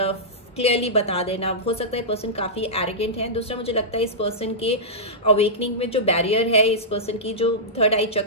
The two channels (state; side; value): normal; both; correlation -0.14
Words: क्लियरली बता देना। हो सकता है पर्सन काफ़ी एरोगेंट है। दूसरा मुझे लगता है इस पर्सन के अवेकनिंग में जो बैरियर है, इस पर्सन की जो 3rd आई